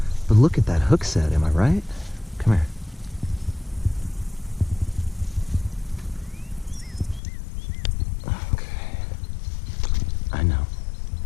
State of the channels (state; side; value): drops out; right; at 7.2 s